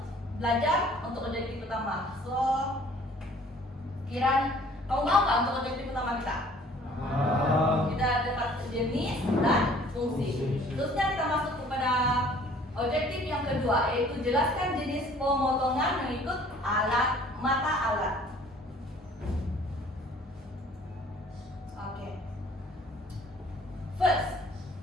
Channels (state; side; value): normal; both; correlation 0.54